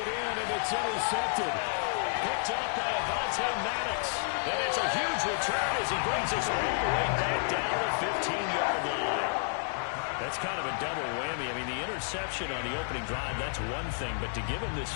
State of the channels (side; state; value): right; silent; 57 dB below the other